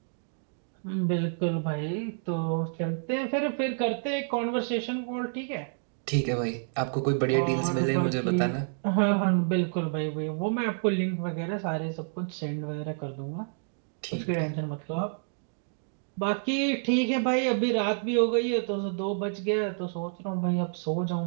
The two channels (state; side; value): silent; left; digital silence